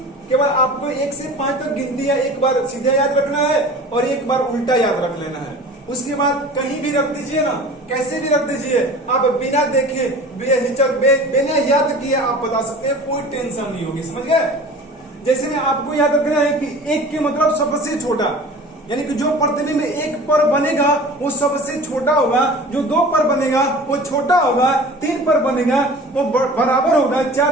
केवल आपको 1 से 5 तक गिनती या एक बार सीधा याद रखना है और एक बार उल्टा याद रख लेना है। उसके बाद कहीं भी रख दीजिए ना, कैसे भी रख दीजिए, आप बिना देखे बिना याद किए आप बता सकते हैं, कोई टेंशन नहीं होगी। समझ गए? जैसे में आपको याद रखना है कि 1 के मतलब सबसे छोटा, यानी कि जो प्रतिबिंब 1 पर बनेगा वो सबसे छोटा होगा, जो 2 पर बनेगा वो छोटा होगा, 3 पर बनेगा वो बराबर होगा,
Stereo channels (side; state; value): both; normal; correlation 0.40